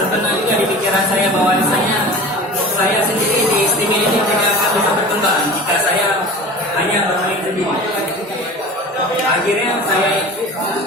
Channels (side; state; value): both; normal; correlation 0.37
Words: juga di pikiran saya bahwasanya saya sendiri di istimewa ini tidak akan bisa berkembang jika saya hanya bermain sendiri. Akhirnya saya